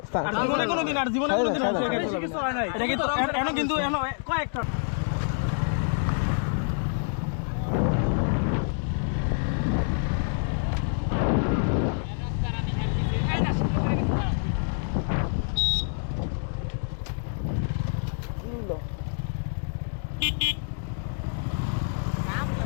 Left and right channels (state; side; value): silent; right; digital silence